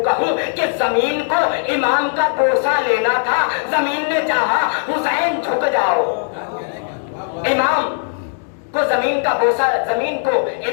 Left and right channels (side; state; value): right; silent; digital silence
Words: کہوں کہ زمین کو امام کا بوسہ لینا تھا، زمین نے چاہا حسین جھک جاؤ. امام کو زمین کو